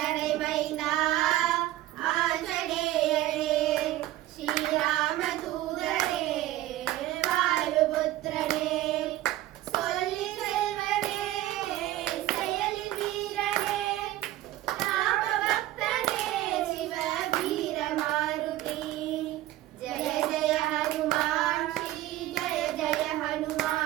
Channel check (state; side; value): quieter; left; 15.1 dB